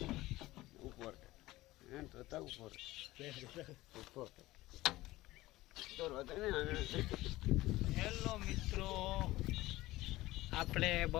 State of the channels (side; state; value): right; quieter; 17.8 dB